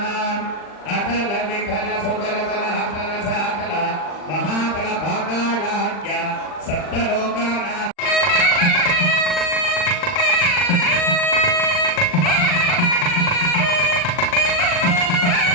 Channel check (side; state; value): right; late; 40 ms